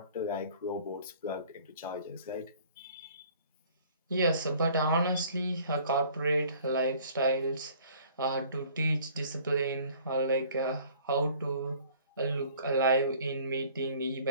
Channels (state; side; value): inverted; both; correlation -0.54